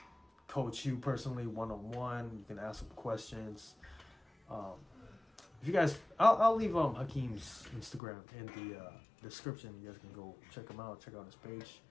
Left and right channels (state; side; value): drops out; right; at 8.0 s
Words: coach you personally one-on-one. You can ask them questions. If you guys, I'll leave Hakeem's Instagram in the description. You guys can go check him out. Check out his page.